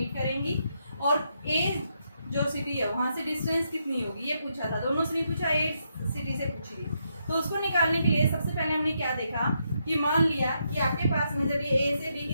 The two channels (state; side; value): inverted; both; correlation -0.79